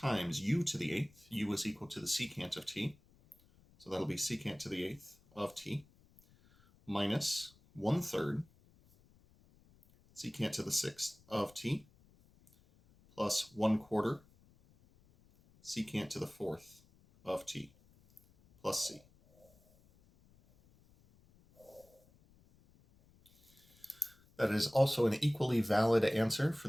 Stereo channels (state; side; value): noise; left; rumble, 29 dB below the sound